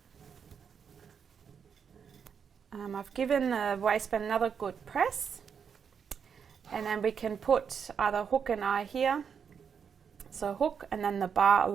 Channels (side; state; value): left; quieter; 6.9 dB